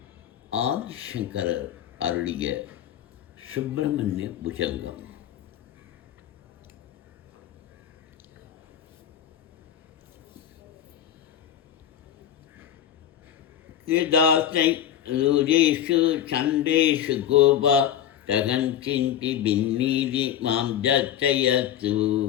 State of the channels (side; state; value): right; quieter; 10.4 dB